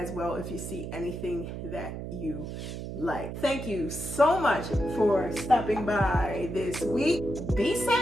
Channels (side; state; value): right; noise; hum, 7 dB below the sound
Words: well if you see anything that you like. Thank you so much for stopping by this week. Be